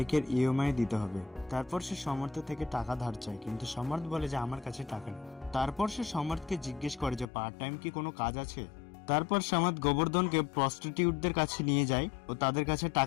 ইএমআই দিতে হবে। তারপর সে সমর্থ থেকে টাকা ধার চায়, কিন্তু সমর্থ বলে যে আমার কাছে টাকা নেই। তারপর সে সমর্থকে জিজ্ঞেস করে যে পার্ট টাইম কি কোনো কাজ আছে। তারপর সমর্থ গোবর্ধনকে প্রস্টিটিউটদের কাছে নিয়ে যায় ও তাদের কাছে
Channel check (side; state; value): right; drops out; at 7.2 s